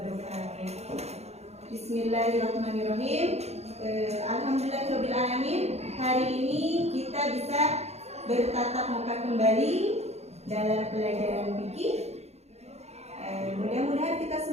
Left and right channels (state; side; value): late; left; 0.31 ms